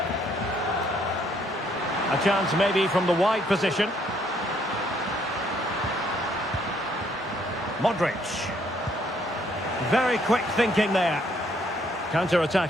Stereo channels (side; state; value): both; normal; correlation 0.68